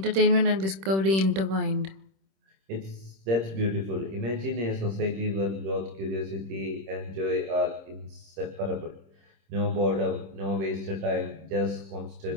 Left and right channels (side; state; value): left; late; 26 ms